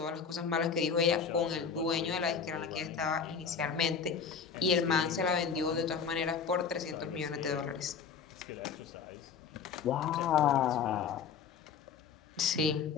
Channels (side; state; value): right; quieter; 6.2 dB